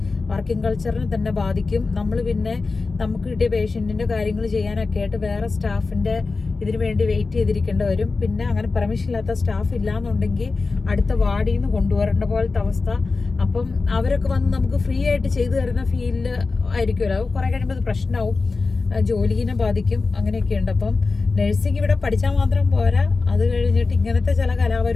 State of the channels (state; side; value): quieter; right; 4.0 dB